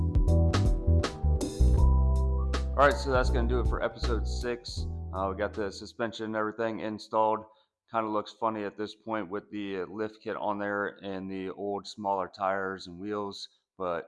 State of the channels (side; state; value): both; identical; correlation 1.00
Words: All right, so that's going to do it for episode 6. We got the suspension and everything installed. Kind of looks funny at this point with the lift kit on there and the old smaller tires and wheels,